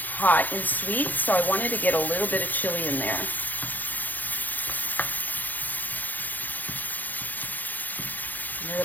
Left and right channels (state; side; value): late; right; 0.084 ms